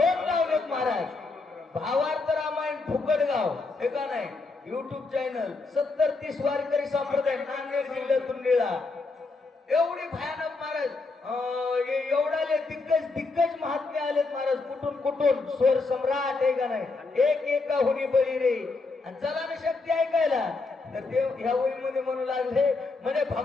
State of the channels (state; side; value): quieter; right; 3.7 dB